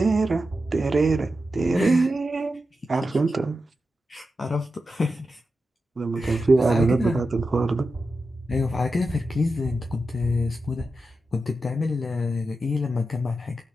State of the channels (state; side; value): normal; both; correlation 0.90